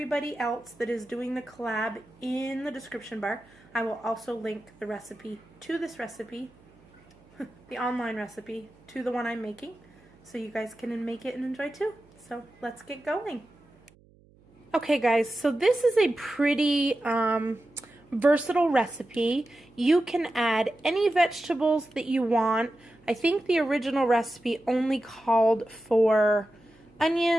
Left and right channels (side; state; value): right; noise; hum, 29 dB below the sound